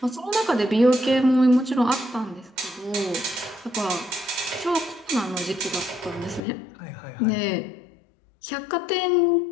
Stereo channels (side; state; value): right; drops out; at 6.4 s